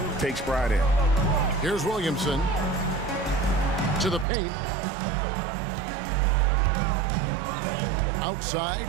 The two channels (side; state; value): left; drops out; at 4.2 s